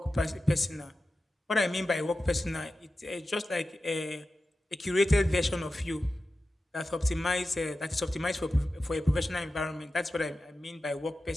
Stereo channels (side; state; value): both; normal; correlation 0.93